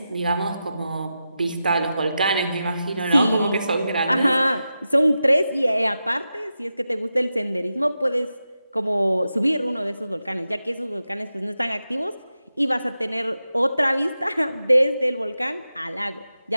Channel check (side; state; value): both; inverted; correlation -0.90